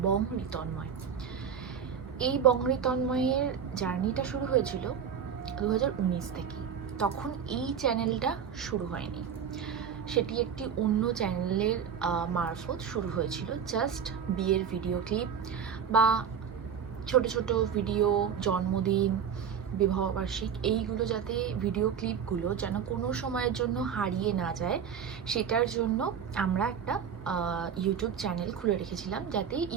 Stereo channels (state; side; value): quieter; left; 7.5 dB